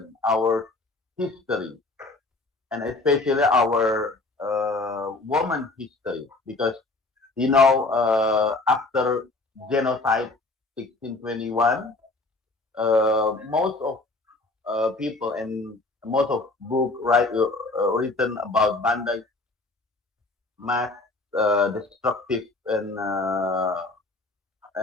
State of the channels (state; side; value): quieter; right; 3.2 dB